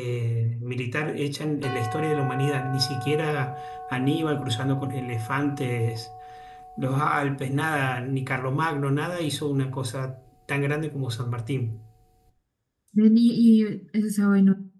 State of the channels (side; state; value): both; identical; correlation 1.00